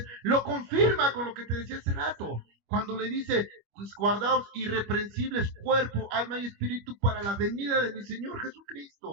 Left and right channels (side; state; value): left; late; 25 ms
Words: lo confirma con lo que te decía hace rato, cuando le dice, pues guardaos irreprensibles cuerpo, alma y espíritu para la venida de mi Señor